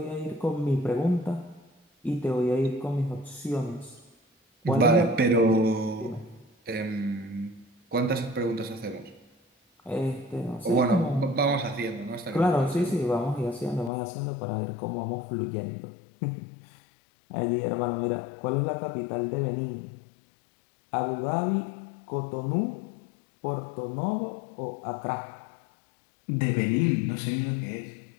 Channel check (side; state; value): right; drops out; at 13.9 s